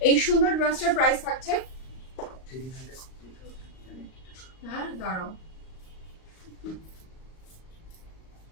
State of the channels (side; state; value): right; late; 38 ms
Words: এই সুন্দর ড্রেসটার প্রাইস থাকছে, হ্যাঁ দাঁড়াও,